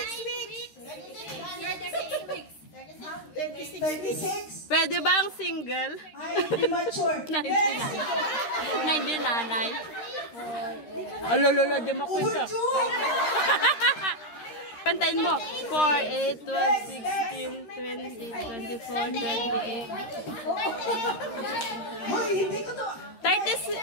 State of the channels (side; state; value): right; late; 13 ms